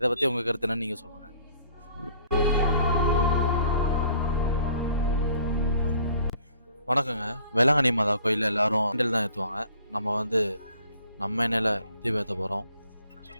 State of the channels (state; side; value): inverted; both; correlation -0.56